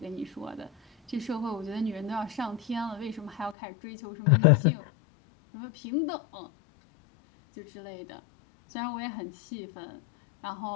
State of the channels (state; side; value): drops out; right; at 3.6 s